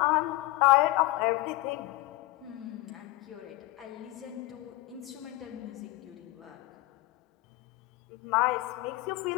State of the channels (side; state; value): right; quieter; 19.1 dB